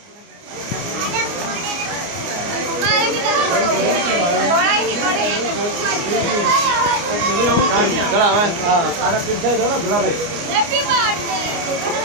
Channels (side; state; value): left; late; 29 ms